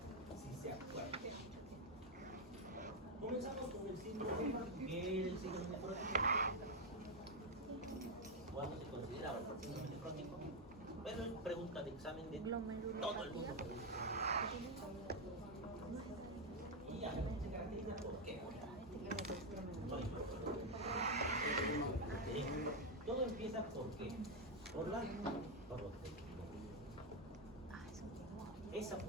si se acuerdan. Comenzamos con el síndrome, que es el síndrome nefrótico. ¿Cuándo se consideraba el síndrome nefrótico? Pero es pregunta de examen de todo el mundo. Y ya se caracteriza por qué. Todo empieza por qué. Por la proteína. Esa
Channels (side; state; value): both; normal; correlation 0.04